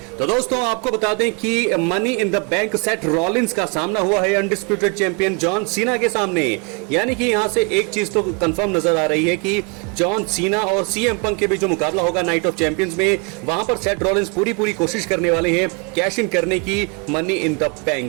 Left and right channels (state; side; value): quieter; left; 32.8 dB